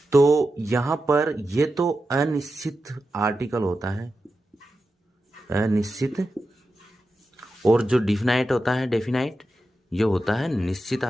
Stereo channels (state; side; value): normal; both; correlation 0.90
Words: तो यहां पर ये तो अनिश्चित आर्टिकल होता है, अनिश्चित, और जो डिफिनाइट होता है डेफिनाइट, ये होता है निश्चित